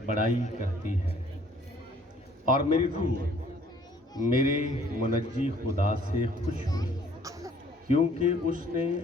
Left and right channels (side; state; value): both; normal; correlation 0.58